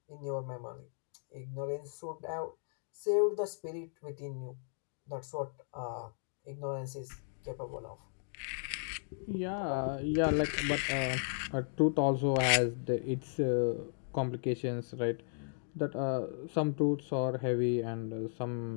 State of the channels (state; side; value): silent; right; digital silence